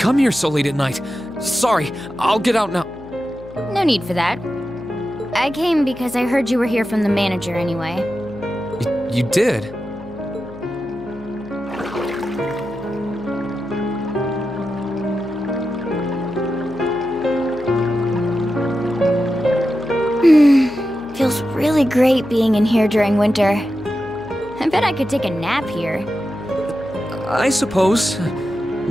here so late at night. Sorry, I'll get out now. No need for that. I came because I heard you were here from the manager anyway. You did? Feels really great being in here during winter. I bet I could take a nap here. I suppose.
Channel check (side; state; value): left; noise; hum, 18 dB below the sound